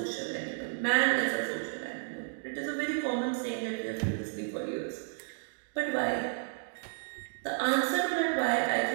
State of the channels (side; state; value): left; silent; digital silence